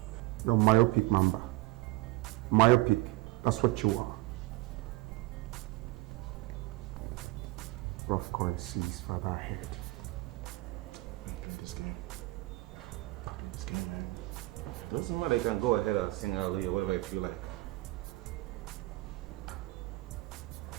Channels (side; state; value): left; quieter; 19.8 dB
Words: You're myopic, Mamba. Myopic. That's what you are. Rough coin sees further ahead. Play this game. Play this game, man. Doesn't matter, you can go ahead and sing hallelujah, whatever you feel like.